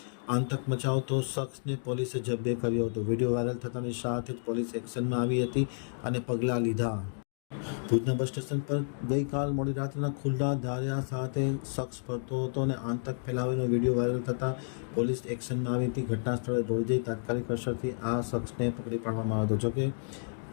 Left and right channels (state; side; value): silent; right; digital silence